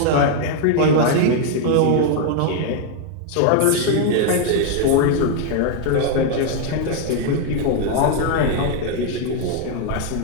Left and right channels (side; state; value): both; different; correlation 0.00